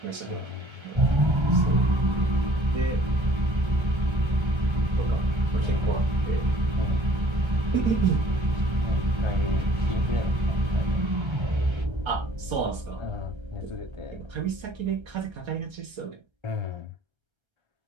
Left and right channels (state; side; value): late; left; 1.3 ms